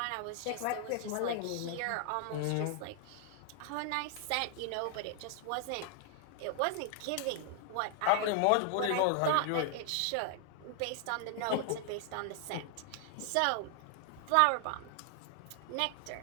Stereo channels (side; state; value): both; different; correlation 0.00